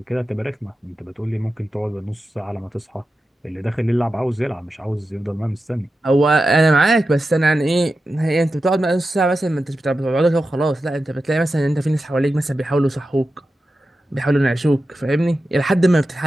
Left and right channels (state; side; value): normal; both; correlation 0.91